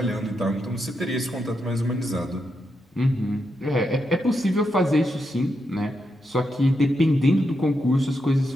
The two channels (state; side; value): normal; both; correlation 0.84